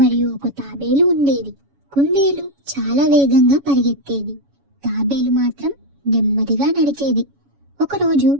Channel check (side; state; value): left; late; 7.1 ms